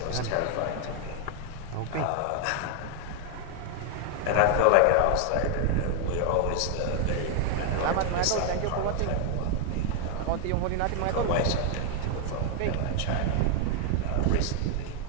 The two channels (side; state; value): both; different; correlation 0.00